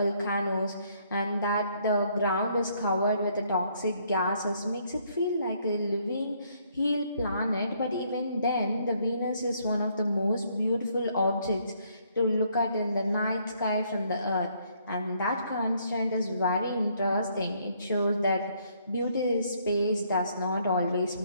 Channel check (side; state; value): both; inverted; correlation -0.68